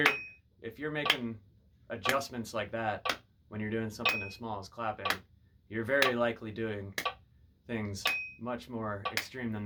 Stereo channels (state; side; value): identical; both; correlation 1.00